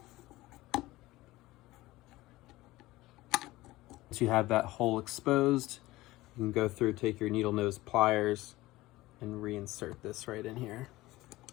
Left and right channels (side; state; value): right; quieter; 18.3 dB